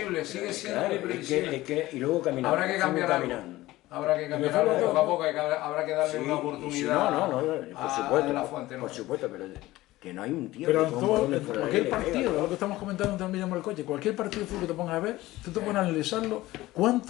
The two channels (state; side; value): quieter; right; 17.5 dB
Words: sigue siendo muy previsible. Y luego caminar. Habrá que cambiar algo. Habrá que cambiar algo poco a poco, habrá que darle una oportunidad por supuesto, a la fuente. Por supuesto, pero que no hay un tío pero que cualquier partido, lo que estamos comentando también en el coche, cualquier partido de fútbol que te pongas a ver, tú te pones a analizarlo,